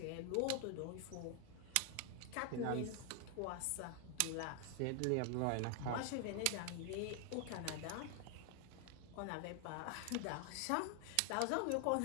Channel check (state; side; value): different; both; correlation 0.00